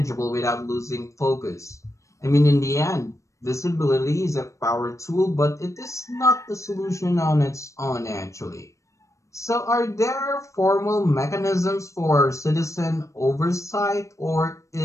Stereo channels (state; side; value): late; right; 0.15 ms